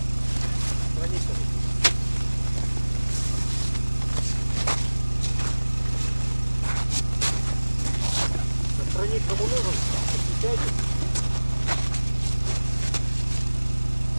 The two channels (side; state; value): both; inverted; correlation -1.00